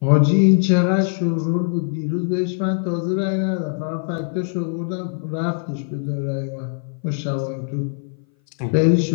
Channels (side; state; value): right; silent; 58 dB below the other